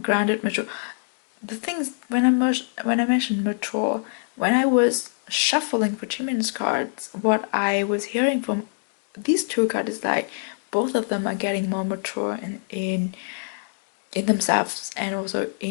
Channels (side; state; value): right; silent; 62 dB below the other